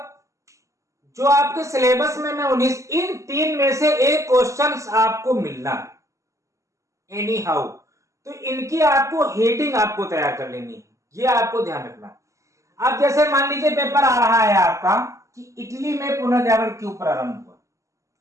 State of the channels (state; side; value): late; left; 0.15 ms